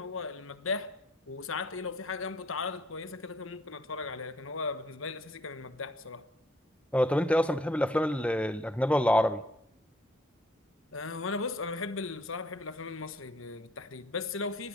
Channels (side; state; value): both; normal; correlation 0.63